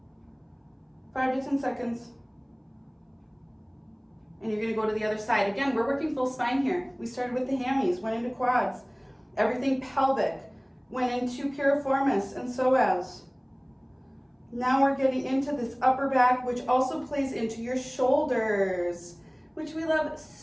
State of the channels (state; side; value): identical; both; correlation 1.00